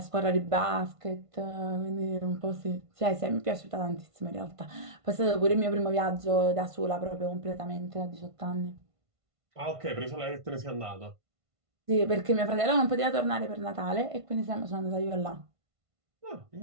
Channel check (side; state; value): left; late; 1.5 ms